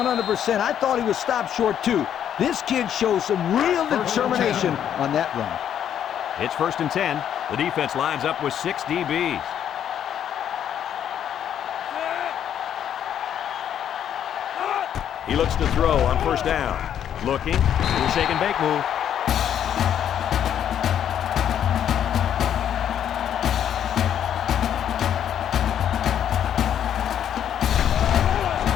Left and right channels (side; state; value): right; quieter; 9.6 dB